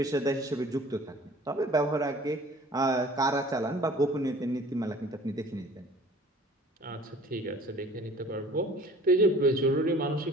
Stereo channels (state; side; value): normal; both; correlation 0.49